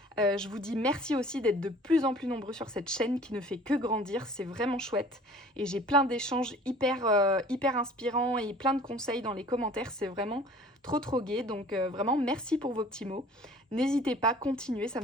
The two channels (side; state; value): both; normal; correlation 0.49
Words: Je vous dis merci aussi d'être de plus en plus nombreux sur cette chaîne qui ne fait que grandir. C'est vraiment chouette. Et j'ai plein d'échanges hyper inspirants et plein de conseils dans les commentaires. C'est vraiment trop gai. Donc vraiment merci pour vos petits mots. N'hésitez pas, continuez, ça